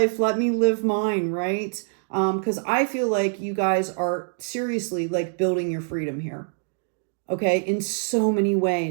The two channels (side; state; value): left; silent; digital silence